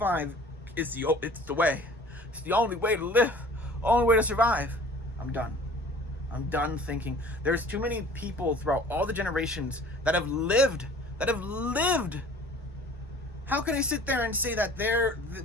is it's the way. It's the only way to live, only way to survive. I'm done. I'm done thinking. There's too many people throughout all the generations that have lived. How can I sit there and say that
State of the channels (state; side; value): normal; both; correlation 0.47